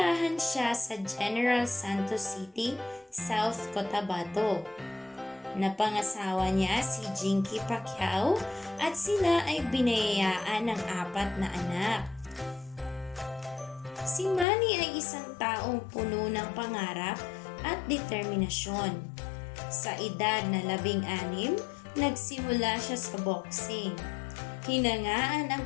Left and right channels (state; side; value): drops out; right; at 14.5 s